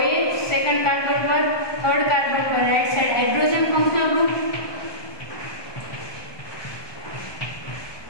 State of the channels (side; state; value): right; late; 1.2 ms